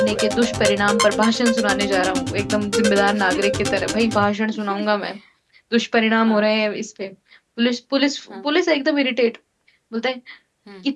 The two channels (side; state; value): both; identical; correlation 1.00